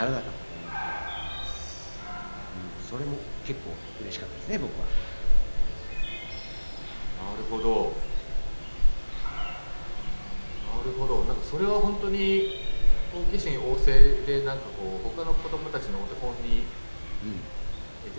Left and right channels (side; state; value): both; inverted; correlation -1.00